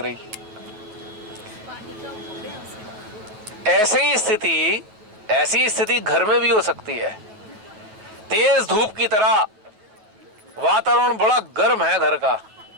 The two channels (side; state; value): left; late; 9.5 ms